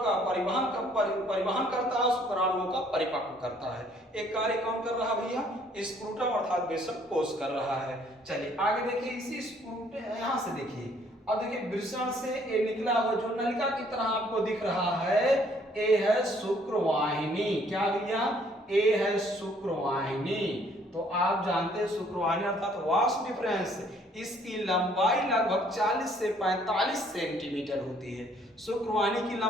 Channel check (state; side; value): normal; both; correlation 0.63